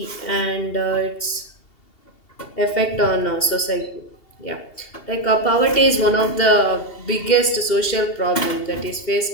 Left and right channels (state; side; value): late; right; 2.7 ms